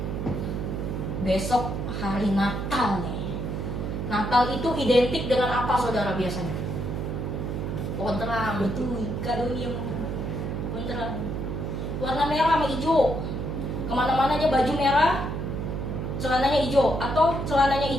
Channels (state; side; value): noise; right; hum, 3 dB below the sound